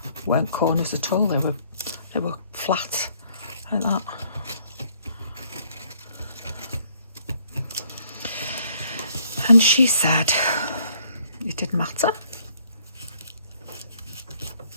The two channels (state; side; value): inverted; both; correlation -0.65